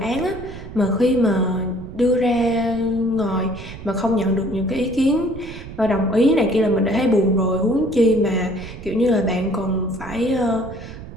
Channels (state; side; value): noise; right; rumble, 13 dB below the sound